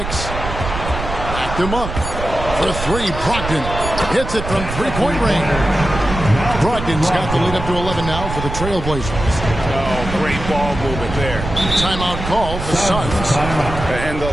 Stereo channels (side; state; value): right; noise; rumble, 7 dB below the sound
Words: Backed him up for 3. Brogdon hits it from 3-point range. Brogdon's got the lead up to 11 now for the Trailblazers. Oh, great ball movement there. Timeout call for Suns. And the